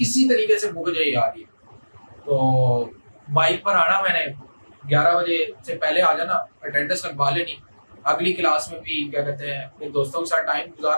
तरीके से मुक जाए यार ये। तो बाइक पर आना, मैंने 11 बजे से पहले आ जाना, अटेंडेंस लगवा लेनी, अगली क्लास में भी क्या कहते हैं अपने दोस्तों के साथ टाइम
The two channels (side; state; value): both; inverted; correlation -1.00